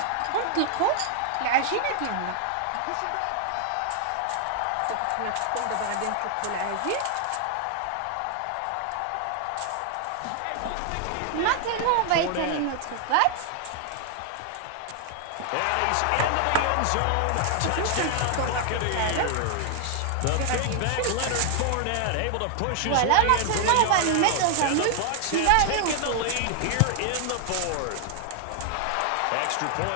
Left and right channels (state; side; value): different; both; correlation 0.00